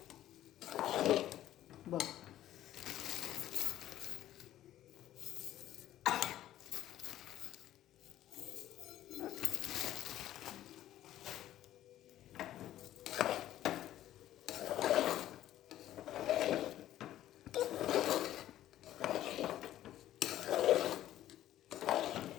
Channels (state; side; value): quieter; right; 13.1 dB